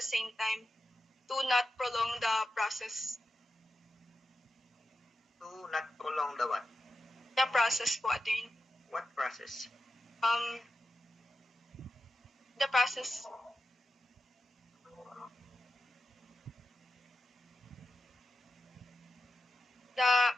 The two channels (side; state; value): both; normal; correlation 0.90